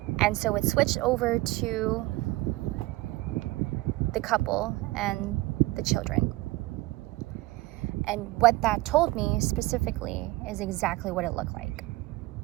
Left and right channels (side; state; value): left; quieter; 19.6 dB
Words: And so it switched over to the couple and the children. And what that told me specifically is exactly what it looked like.